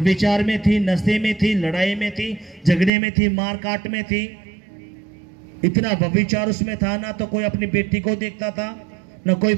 में थी, नशे में थी, लड़ाई में थी, झगड़े में थी, मार काट में थी। इतना व्यभिचार उसमें था, ना तो कोई अपनी बेटी को देखता था, ना कोई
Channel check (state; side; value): drops out; left; at 2.9 s